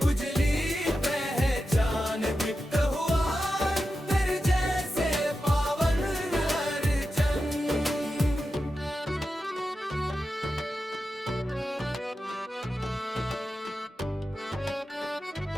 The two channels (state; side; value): normal; both; correlation 0.90